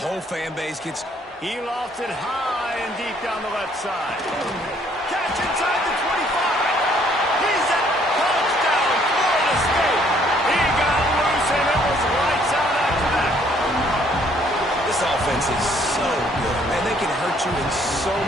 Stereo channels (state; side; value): normal; both; correlation 0.64